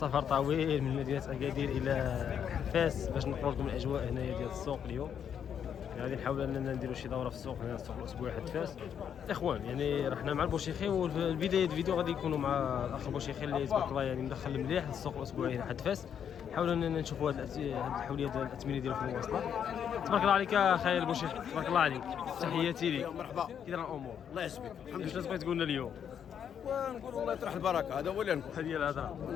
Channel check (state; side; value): quieter; right; 8.4 dB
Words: طويل من مدينه اكادير الى فاس باش نقول لكم الاجواء هنايا ديال السوق اليوم. غادي نحاول اننا نديروا شي دوره في السوق هنا، السوق الاسبوعي حد فاس. الاخوان يعني رحنا مع البوشيخي، والبدايه الفيديو غادي يكونوا مع الاخ البوشيخي اللي تبارك الله يعني مدخل مليح للسوق الاسبوعي هنا حد فاس. نحاولوا اننا نشوفوا هذه الحوليه ديال الاثمنه ديالو في المواصلات. تبارك الله عليك اخي البوشيخي، تبارك الله عليك، تحياتي لك. مرحبا، كي داير الامور؟ الله يسلمك. الحمد لله. واش بغيت تقول لنا اليوم؟ ونقول الله يطرح البركه، هذا هو اللي نقول. هذه هي الهضره،